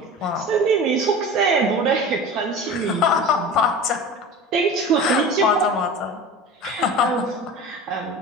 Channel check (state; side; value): normal; both; correlation 0.34